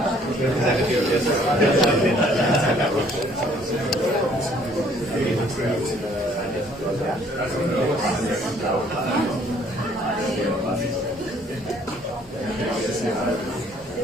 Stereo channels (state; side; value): normal; both; correlation 0.61